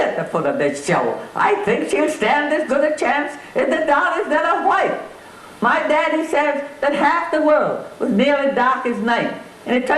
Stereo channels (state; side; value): identical; both; correlation 1.00